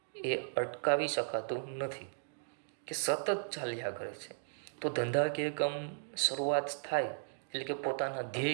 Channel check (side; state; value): left; silent; digital silence